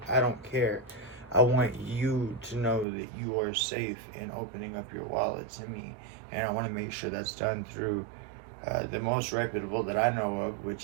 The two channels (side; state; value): left; drops out; at 2.9 s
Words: I don't care. I want you to know that you are safe in opening up your wallet to me. And I want to make sure that's done through the most reputable that I know of,